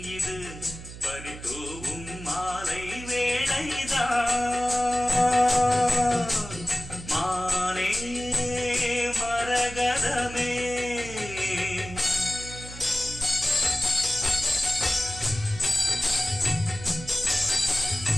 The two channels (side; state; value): right; noise; hum, 13 dB below the sound